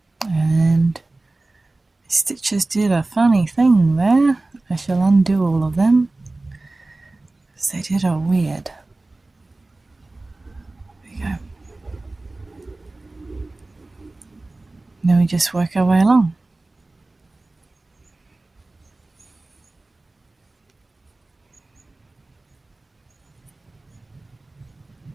And the stitches did a funny thing there. I shall undo all of them, because they did a weird. There we go. Then we just work our way along.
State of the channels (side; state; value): left; quieter; 3.0 dB